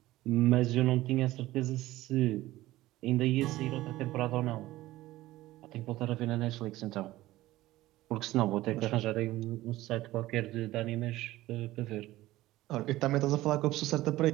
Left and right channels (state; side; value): quieter; left; 16.8 dB